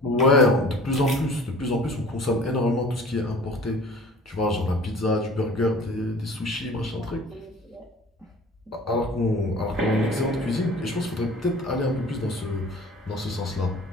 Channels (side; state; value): both; normal; correlation 0.46